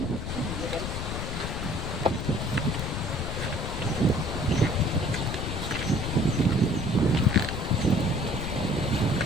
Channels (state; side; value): noise; left; rumble, 4 dB below the sound